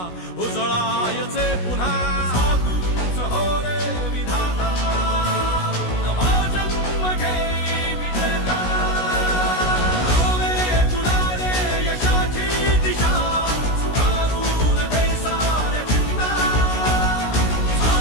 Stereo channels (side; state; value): right; late; 16 ms